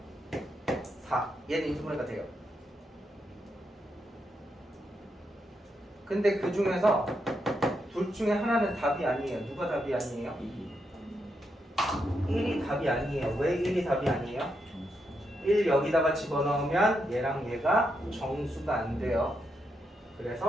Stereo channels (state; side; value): normal; both; correlation 0.82